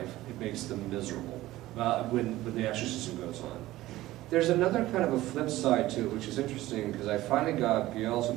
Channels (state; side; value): quieter; left; 16.4 dB